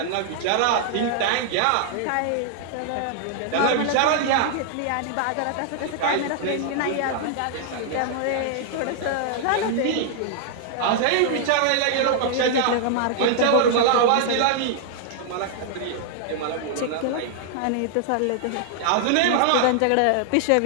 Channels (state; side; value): different; both; correlation -0.01